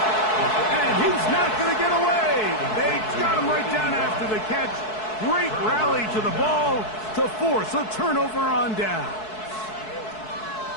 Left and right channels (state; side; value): late; right; 4.6 ms